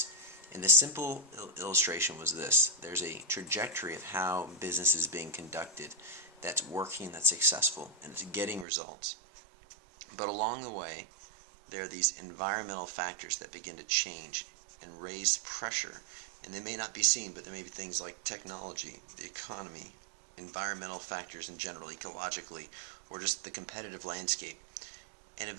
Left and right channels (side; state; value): left; drops out; at 8.7 s